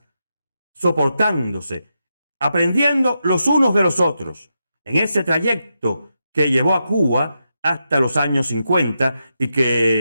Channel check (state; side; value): inverted; both; correlation -0.86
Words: soportándose, aprendiendo los unos de los otros, en ese trayecto que llevó a Cuba hasta los años 50 y